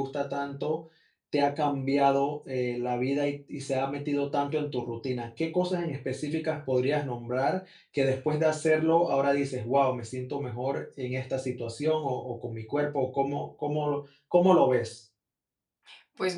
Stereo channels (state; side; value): identical; both; correlation 1.00